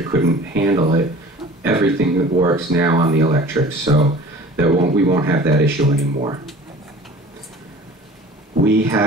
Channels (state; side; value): normal; both; correlation 0.44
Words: couldn't handle it. Everything works now on the electric, so we won't have that issue anymore. We